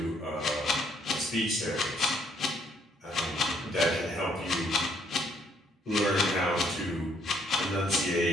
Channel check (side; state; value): both; normal; correlation 0.68